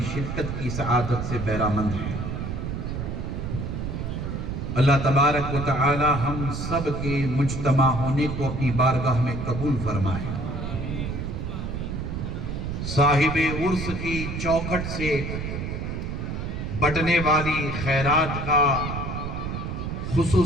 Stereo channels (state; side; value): noise; right; rumble, 4 dB below the sound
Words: شرکت کی سعادت سے بہرامند ہے. اللہ تبارک و تعالی ہم سب کے مجتمع ہونے کو اپنی بارگاہ میں قبول فرمائے. صاحب عرس کی چوکھٹ سے بٹنے والی خیرات کا